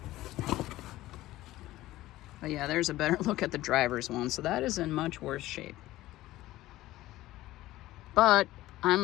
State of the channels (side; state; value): right; quieter; 16.3 dB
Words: But yeah, there's a better look at the driver's one. So that is in much worse shape. But I'm